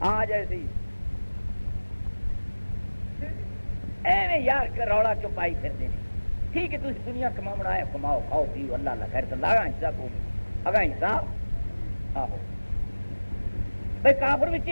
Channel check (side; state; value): both; inverted; correlation -1.00